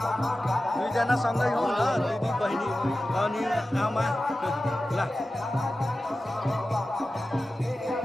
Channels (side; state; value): both; normal; correlation 0.94